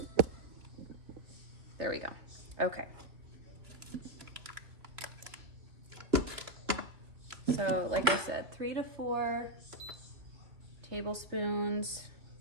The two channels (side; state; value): left; late; 2.8 ms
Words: There we go. Okay. So like I said, 3 to 4 tablespoons.